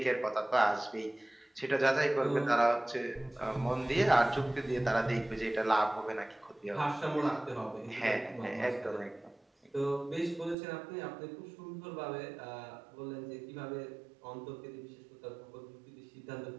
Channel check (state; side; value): drops out; left; at 10.6 s